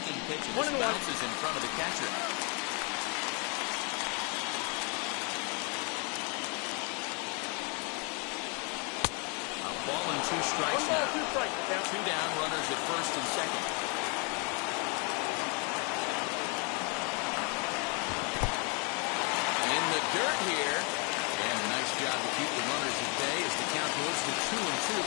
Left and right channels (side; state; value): right; quieter; 34.8 dB